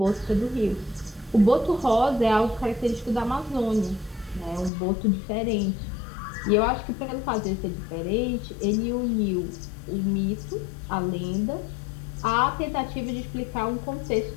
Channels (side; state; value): right; drops out; at 4.7 s